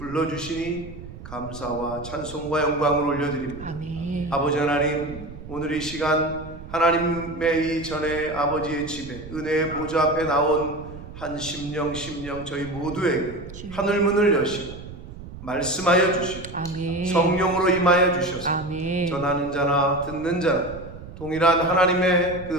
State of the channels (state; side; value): noise; right; rumble, 14 dB below the sound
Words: 감사와 찬송과 영광을 올려드립니다. 아멘. 아버지 하나님, 오늘 이 시간 하나님의 이 전에 아버지의 집에 은혜의 보좌 앞에 나온 한 심령 저희 모두에게 하늘문을 여시고 말씀하여 주시고 아멘. 성령으로 임하여 주셔서 아멘. 전하는 자나 듣는 자나 동일한 하나님의 그